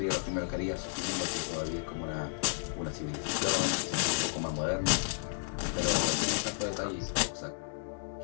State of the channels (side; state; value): right; silent; digital silence